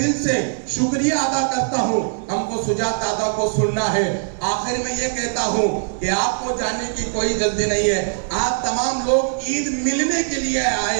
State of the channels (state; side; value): silent; left; digital silence